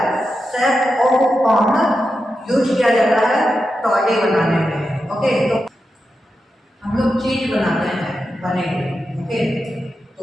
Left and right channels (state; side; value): normal; both; correlation 0.89